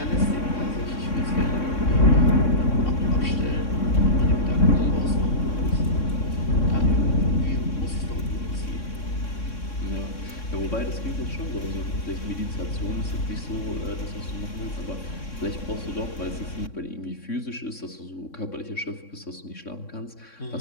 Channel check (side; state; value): right; late; 3.6 ms